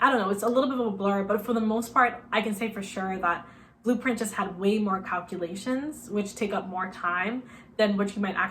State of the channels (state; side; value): identical; both; correlation 1.00